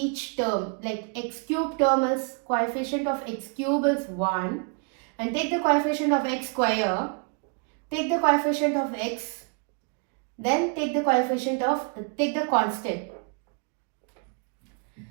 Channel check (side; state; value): left; quieter; 38.2 dB